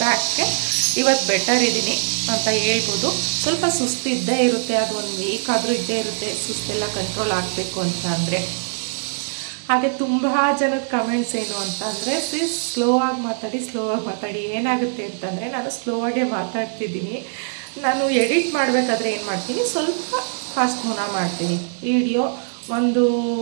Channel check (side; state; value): left; silent; digital silence